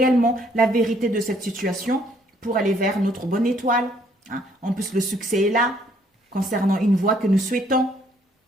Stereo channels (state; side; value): normal; both; correlation 0.65